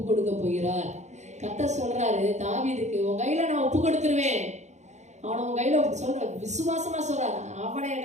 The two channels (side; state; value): left; late; 0.33 ms